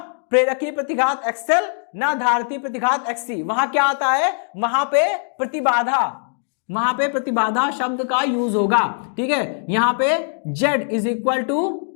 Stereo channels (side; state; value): right; silent; digital silence